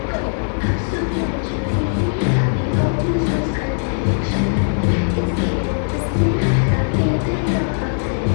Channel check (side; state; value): right; silent; 66 dB below the other